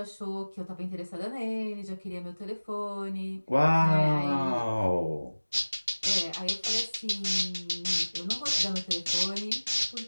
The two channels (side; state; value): both; inverted; correlation -1.00